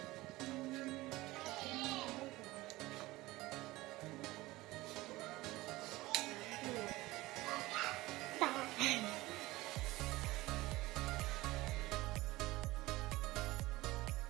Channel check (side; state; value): left; quieter; 19.3 dB